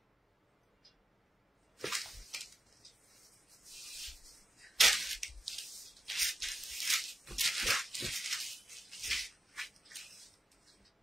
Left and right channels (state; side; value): normal; both; correlation 0.90